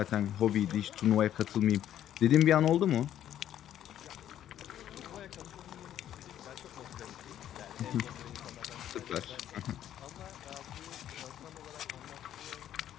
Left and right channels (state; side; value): quieter; right; 11.1 dB